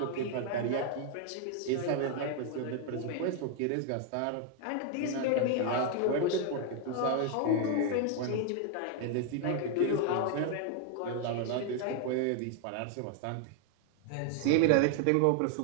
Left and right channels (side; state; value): both; different; correlation 0.00